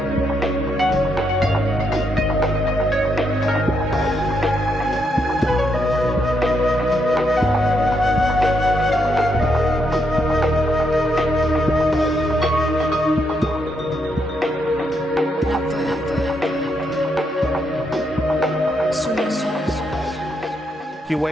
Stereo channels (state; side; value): normal; both; correlation 0.78